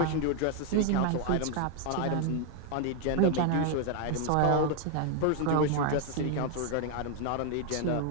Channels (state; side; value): different; both; correlation 0.01